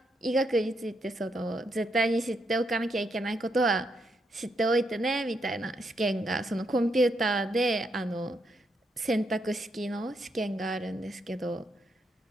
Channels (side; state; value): both; normal; correlation 0.79